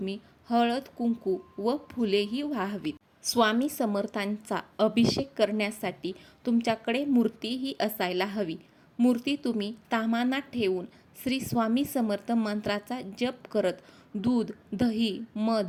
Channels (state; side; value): identical; both; correlation 1.00